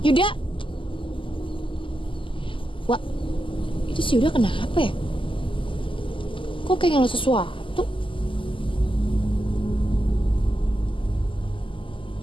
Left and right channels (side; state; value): right; late; 0.25 ms